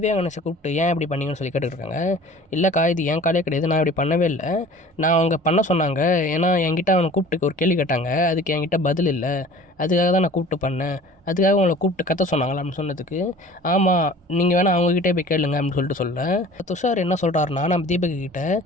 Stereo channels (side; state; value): both; normal; correlation 0.45